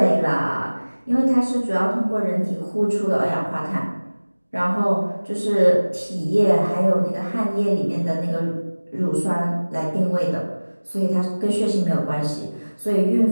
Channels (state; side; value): inverted; both; correlation -1.00